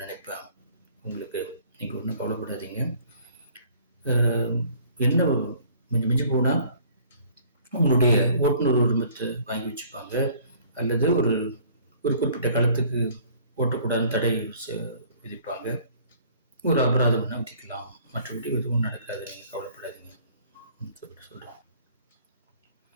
நினைப்பேன் உங்களுக்கு, நீங்கள் ஒன்றும் கவலைப்படாதீங்க. என்ன மிஞ்சி போனால் உங்களுடைய ஓட்டுநர் உரிமத்தை வாங்கி வச்சுப்பாங்க, அல்லது ஒரு குறிப்பிட்ட காலத்துக்கு ஓட்டக்கூடாதுன்னு தடை விதிப்பாங்க, ஒரு அபராதம் விதிக்கலாம், மற்றபடி எதுவும் நடக்காது, நீங்கள் கவலைப்படாதீங்க சொல்லிட்டு சொல்கிறோம்.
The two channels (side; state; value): both; inverted; correlation -0.55